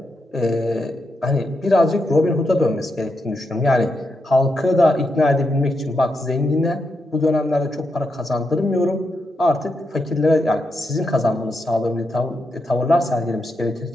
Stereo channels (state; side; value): normal; both; correlation 0.84